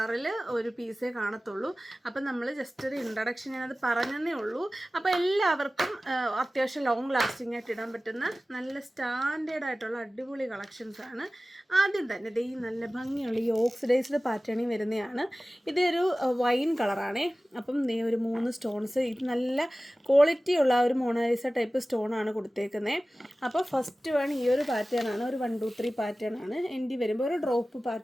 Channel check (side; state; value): both; normal; correlation 0.97